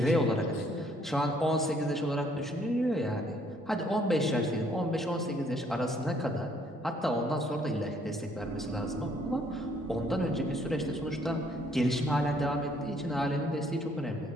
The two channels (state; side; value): normal; both; correlation 0.65